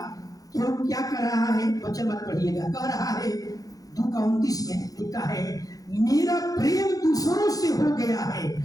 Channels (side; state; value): right; late; 0.17 ms